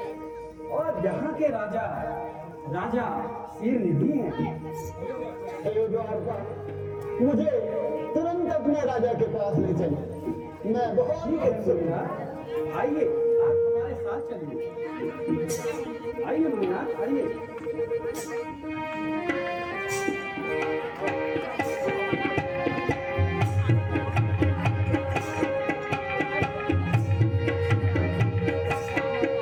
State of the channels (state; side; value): identical; both; correlation 1.00